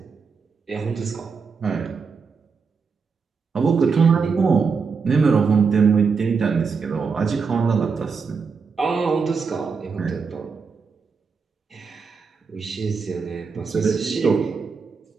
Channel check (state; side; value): quieter; left; 5.3 dB